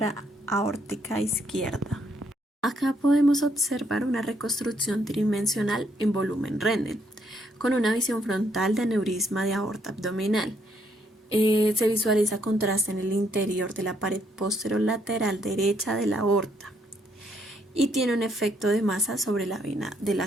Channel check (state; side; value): normal; both; correlation 0.72